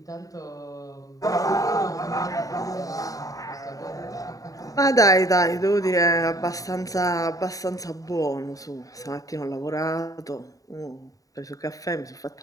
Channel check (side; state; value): right; late; 0.17 ms